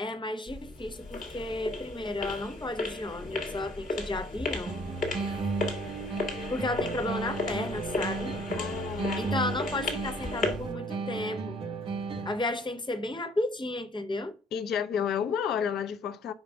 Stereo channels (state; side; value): normal; both; correlation 0.60